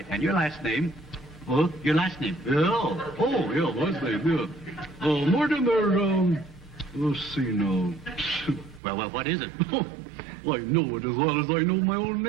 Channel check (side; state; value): left; drops out; at 8.8 s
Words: And your last name? Huh? Your last name? Yeah. Oh, yeah, last name, yeah. Mortimer, let's see now. Well, what is it? I know it as well as I know my own